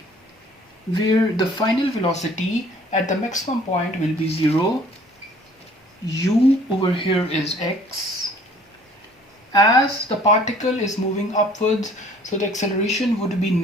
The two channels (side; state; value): both; normal; correlation 0.54